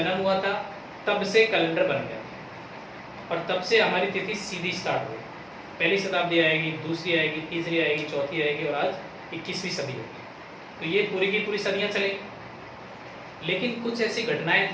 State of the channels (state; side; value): identical; both; correlation 1.00